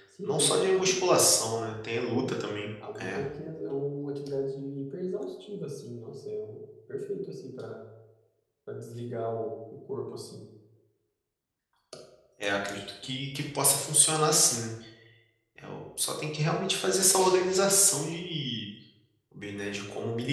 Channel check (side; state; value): both; identical; correlation 1.00